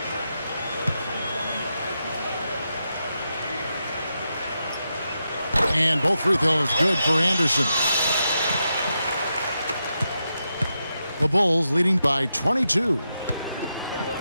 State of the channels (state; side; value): inverted; both; correlation -0.86